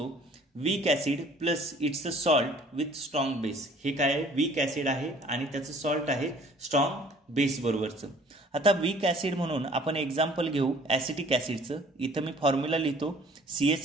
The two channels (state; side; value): normal; both; correlation 0.54